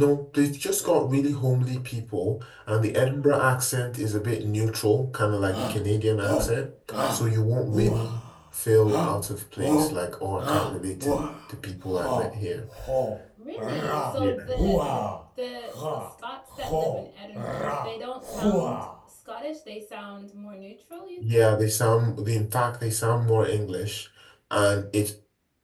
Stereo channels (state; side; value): identical; both; correlation 1.00